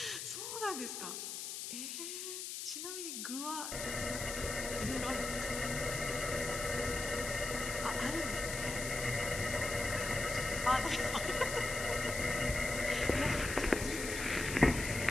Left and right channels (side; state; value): left; noise; hiss, 6 dB below the sound